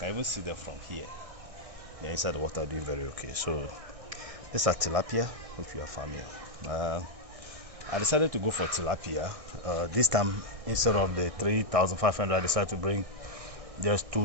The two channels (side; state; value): left; late; 1.6 ms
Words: even see them from here. They're inside the water doing very okay. So these are tilapia, which we are farming. I decided to go for tilapia. This time, instead of the 3,500, I decided to bring just